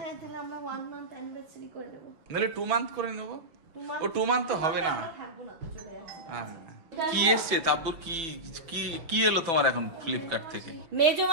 হ্যাঁ, তাহলে আমরা 1 মান্থ অ্যানিভার্সারি করে নেব। নাহলে 2 মান্থ করে নেবো। 2 মান্থ ও 2 মান্থ তো হবে না। থাকবো না তো, চলে যাচ্ছি। হ্যাঁ। কি এসছে তাব্বুর? কি কি কি এলো তোমার এখন ফ্লিপকার্ট থেকে? মেজো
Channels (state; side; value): late; left; 6.0 ms